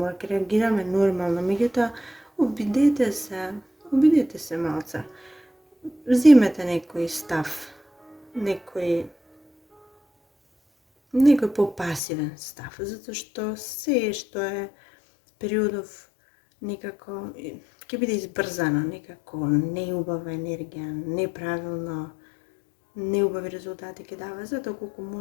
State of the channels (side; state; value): right; drops out; at 12.0 s